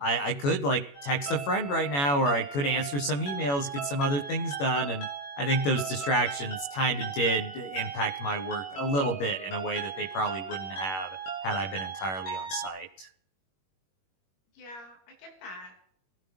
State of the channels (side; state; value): right; late; 21 ms